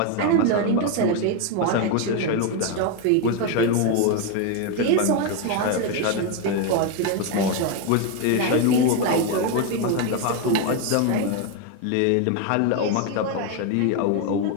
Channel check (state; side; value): different; both; correlation 0.02